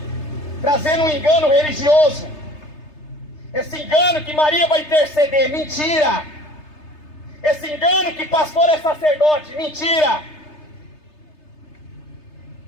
trazendo um engano religioso. Esse engano que Maria vai interceder, mentira. Esse engano que pastor é sacerdote, mentira.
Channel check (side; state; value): right; late; 3.3 ms